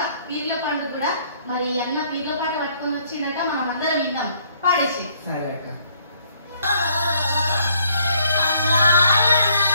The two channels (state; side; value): inverted; both; correlation -0.64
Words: పీర్ల పండుగ కూడా. మరి అన్న పీర్ల పాట పట్టుకొని వచ్చిందట, మనం అందరం విందాం. పాడేసి. సరే అక్క.